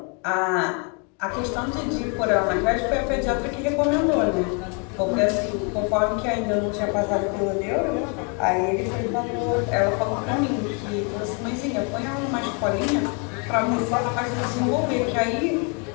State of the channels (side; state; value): right; quieter; 36.2 dB